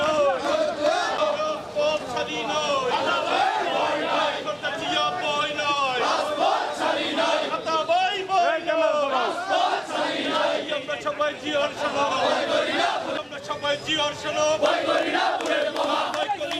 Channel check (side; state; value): both; identical; correlation 1.00